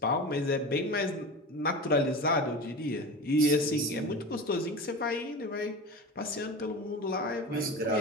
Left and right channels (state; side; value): normal; both; correlation 0.30